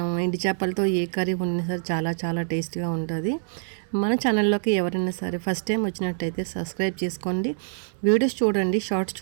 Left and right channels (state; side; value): silent; left; digital silence